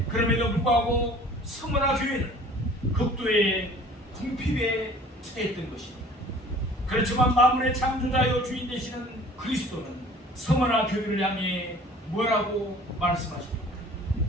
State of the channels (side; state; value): both; normal; correlation 0.49